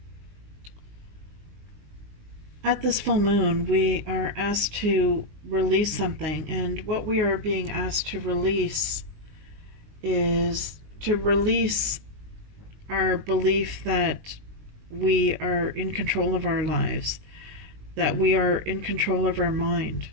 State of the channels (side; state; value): left; late; 19 ms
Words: at this full moon, we are asked to release something, and what we are being asked to release is to release our belief that we are in control of our lives, that we are in control of our mind.